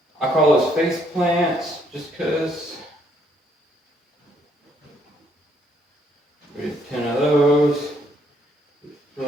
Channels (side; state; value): both; normal; correlation 0.69